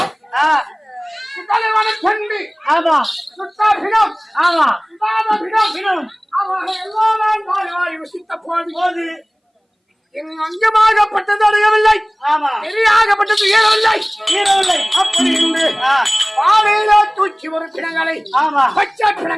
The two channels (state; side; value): identical; both; correlation 1.00